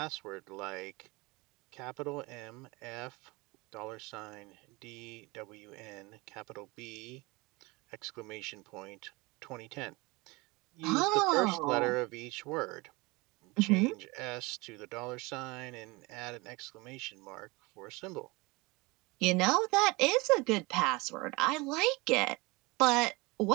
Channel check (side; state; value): left; quieter; 24.5 dB